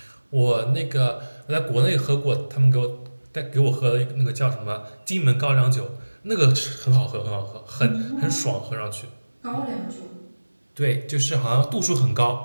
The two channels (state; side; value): inverted; both; correlation -1.00